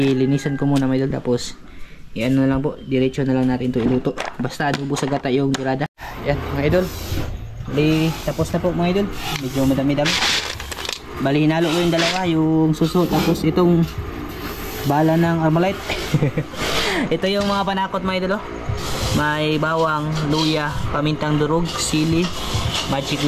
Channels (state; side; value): identical; both; correlation 1.00